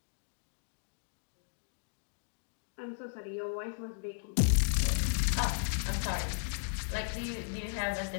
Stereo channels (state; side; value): silent; right; digital silence